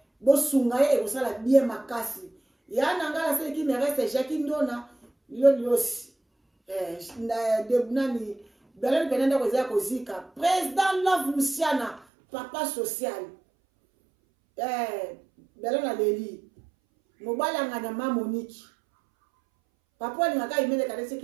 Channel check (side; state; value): left; drops out; at 12.1 s